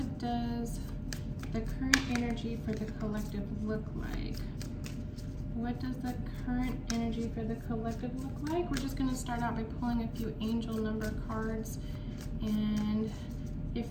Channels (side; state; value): both; identical; correlation 1.00